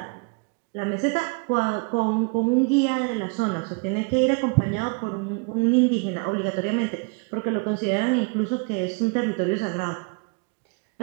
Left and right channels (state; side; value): quieter; left; 33.7 dB